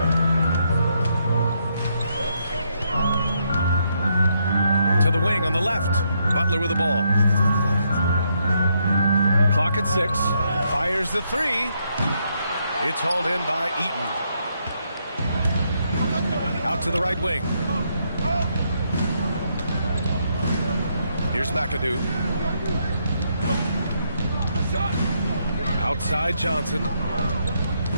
To the wing on the left. Butler with the ball. Clock at 6. Fires the three. It's hauled in by Eaton. Out to the right wing. Here's McAdoo. Outside Johnson.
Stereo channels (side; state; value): both; inverted; correlation -0.76